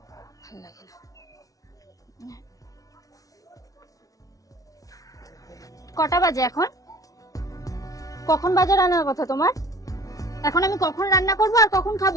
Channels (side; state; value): right; late; 0.17 ms